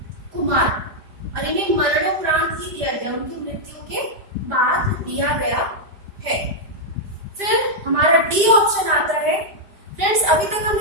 कुमार, और इन्हें मरणोपरांत ही दिया गया, उनकी मृत्यु के बाद दिया गया है। फिर हमारा डी ऑप्शन आता है। फ्रेंड्स अभी तक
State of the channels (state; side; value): late; left; 5.0 ms